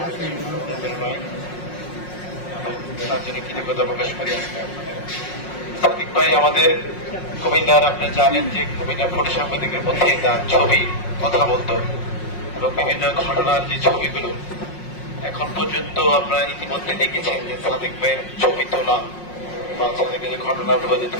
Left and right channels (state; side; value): late; right; 5.5 ms